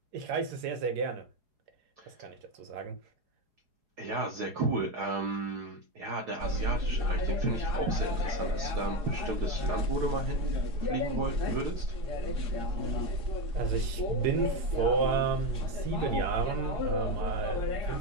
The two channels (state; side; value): late; left; 4.8 ms